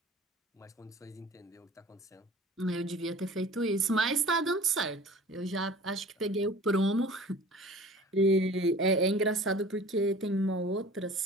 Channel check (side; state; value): both; normal; correlation 0.44